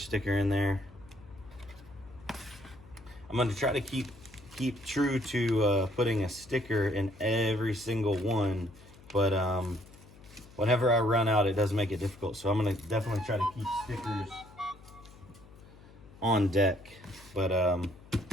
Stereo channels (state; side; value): noise; left; hum, 22 dB below the sound